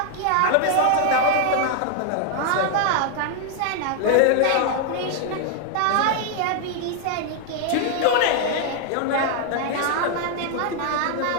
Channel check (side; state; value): both; different; correlation 0.00